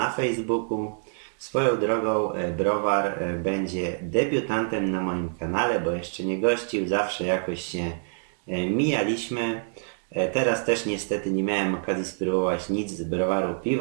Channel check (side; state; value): left; silent; digital silence